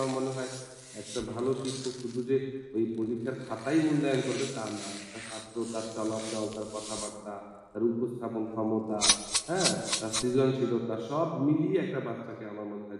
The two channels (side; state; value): both; identical; correlation 1.00